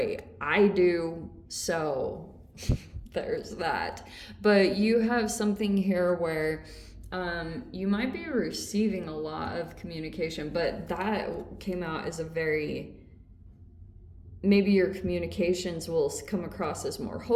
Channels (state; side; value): identical; both; correlation 1.00